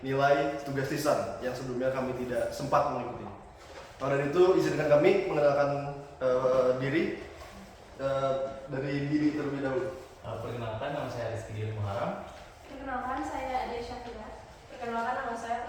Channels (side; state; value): both; identical; correlation 1.00